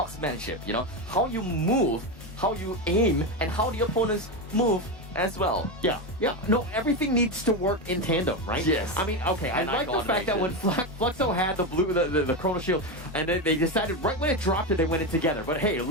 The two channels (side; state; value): both; normal; correlation 0.14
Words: how you move, how you aim, and how the opponents move as well. Yeah. No, everything needs to work in tandem, right? Yes. I mean, okay, I like the fact that when Fluxo had the Chrono Shield, and then they decided right when it dropped it, they went in together. But hey,